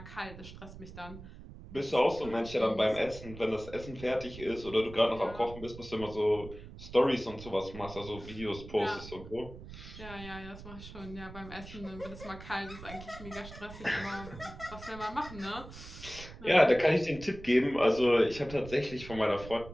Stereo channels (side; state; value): right; noise; rumble, 14 dB below the sound